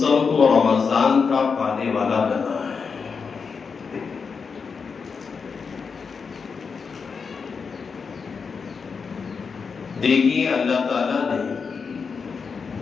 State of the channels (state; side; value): quieter; right; 5.5 dB